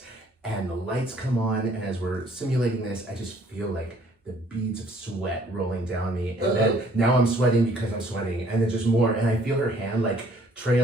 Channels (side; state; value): both; normal; correlation 0.60